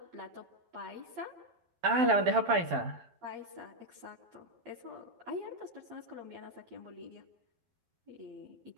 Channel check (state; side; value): late; left; 12 ms